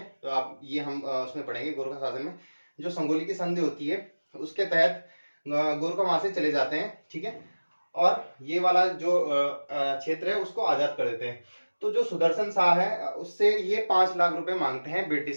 तो आप ये हम उसमें पढ़ेंगे गोरखा शासन में। जो संगोली की संधि होती है उसके तहत गोरखा वहां से चले जाते हैं। ठीक है, और ये वाला जो क्षेत्र है उसको आजाद कर देते हैं। तो जो सुदर्शन शाह है उससे ये 5 लाख रुपए मांगते हैं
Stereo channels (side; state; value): both; inverted; correlation -1.00